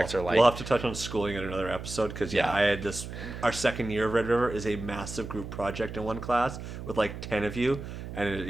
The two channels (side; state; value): right; noise; hum, 9 dB below the sound